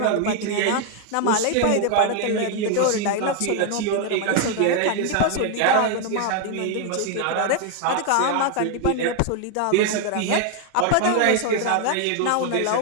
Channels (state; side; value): different; both; correlation 0.01